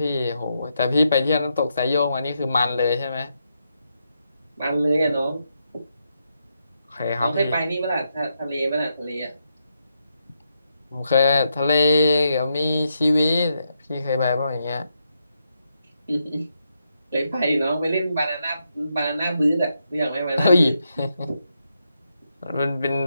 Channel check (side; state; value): both; inverted; correlation -0.83